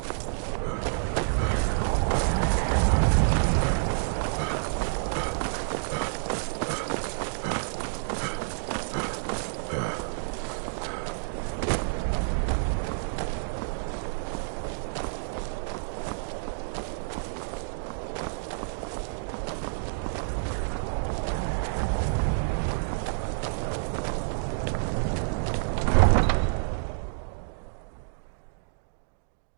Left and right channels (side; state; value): left; silent; digital silence